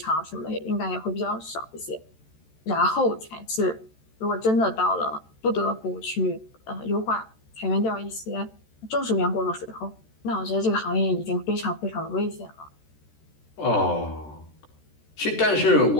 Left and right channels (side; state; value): right; late; 13 ms